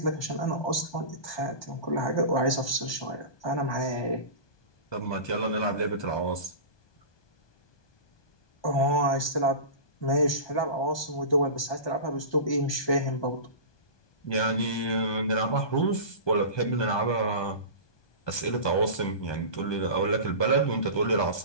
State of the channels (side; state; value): right; late; 1.2 ms